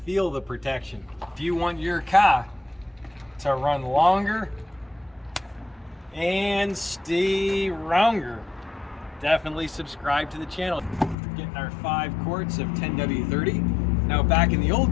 the protection. If you want your car to run longer and stay longer, definitely subscribe to the channel. Getting our 5 quarts of 10W30. Now back in the old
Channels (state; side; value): drops out; right; at 11.2 s